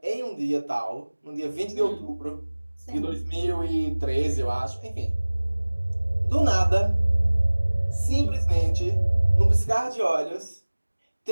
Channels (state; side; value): inverted; both; correlation -1.00